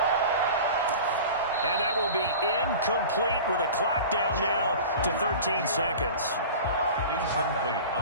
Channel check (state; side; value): inverted; both; correlation -0.37